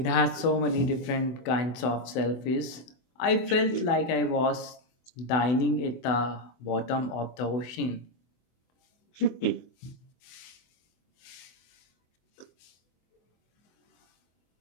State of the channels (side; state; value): right; late; 24 ms